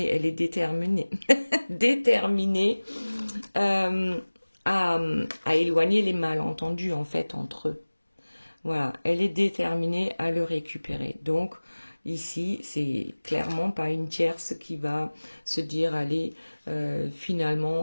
elle est déterminée, déterminée à éloigner les malentendus, en fait, entre eux. Voilà, elle est déterminée à le récupérer. Donc, ici, c'est clairement pas une tierce qui va se dire, allez,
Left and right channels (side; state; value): both; inverted; correlation -1.00